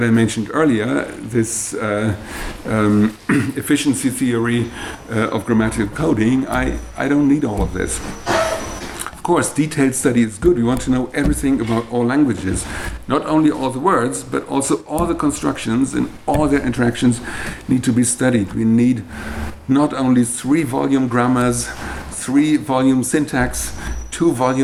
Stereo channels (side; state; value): both; identical; correlation 1.00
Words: I mentioned earlier, this efficiency theory of grammatical coding, I don't need all of this. Of course, detailed study is good. We want to know everything about all languages. Not only all the words, but also all the constructions and all their interactions need to be studied. We need not only 3-volume grammars, 3-volume syntax,